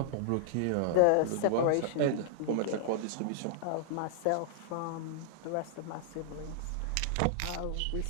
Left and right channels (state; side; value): different; both; correlation -0.01